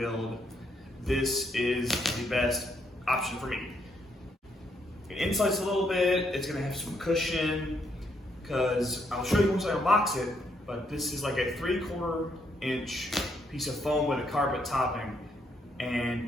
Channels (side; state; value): both; normal; correlation 0.74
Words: this is the best option for me. It insulates a little bit, it's going to have some cushion, because I'll show you once I unbox it, but this is like a 3/4 inch piece of foam with a carpet topping,